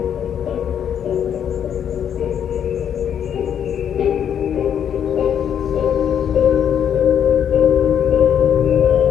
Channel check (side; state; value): right; quieter; 8.8 dB